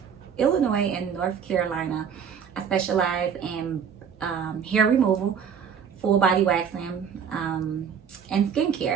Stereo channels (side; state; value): left; quieter; 7.3 dB